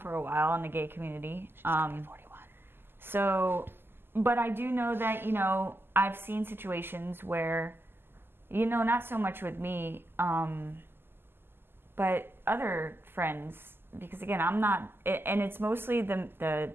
a while in the gay community. She's 41. So, but I do know that I've seen situations where. Not so much with me, but other friends, because again, I'm not, and it's mostly the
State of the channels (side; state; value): left; late; 0.11 ms